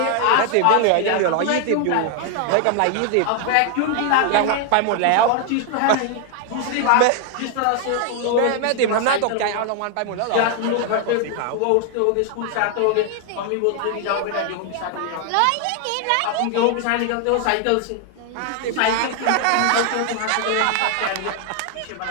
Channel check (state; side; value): different; both; correlation 0.00